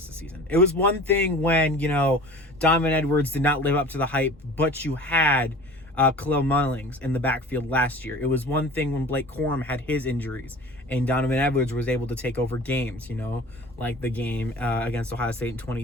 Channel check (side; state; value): both; normal; correlation 0.41